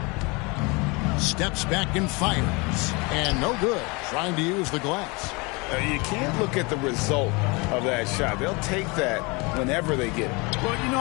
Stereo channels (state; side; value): quieter; right; 27.5 dB